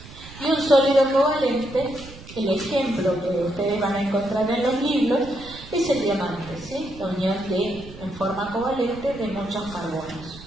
Y un sólido covalente, el ejemplo que ustedes van a encontrar en los libros, es el diamante, ¿sí? La unión en forma covalente de muchos carbonos.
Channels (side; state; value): right; noise; rumble, 17 dB below the sound